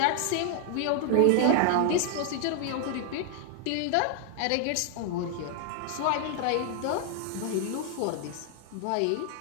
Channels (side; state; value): both; different; correlation 0.00